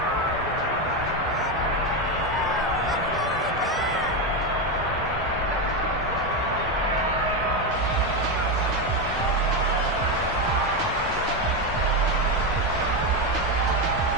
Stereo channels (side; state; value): both; normal; correlation 0.10